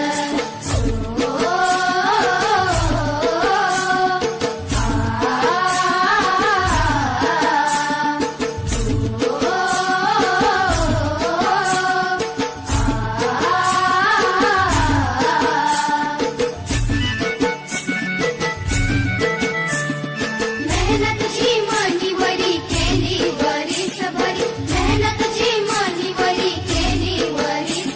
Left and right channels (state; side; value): identical; both; correlation 1.00